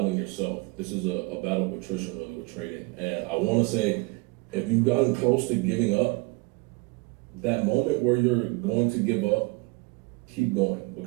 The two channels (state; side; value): quieter; left; 25.4 dB